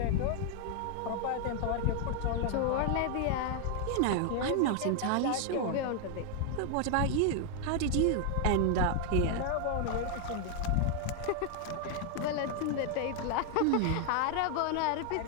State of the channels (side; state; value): both; different; correlation 0.00